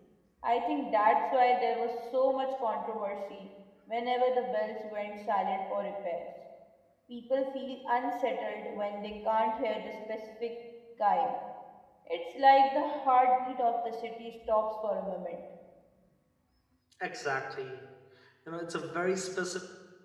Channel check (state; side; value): identical; both; correlation 1.00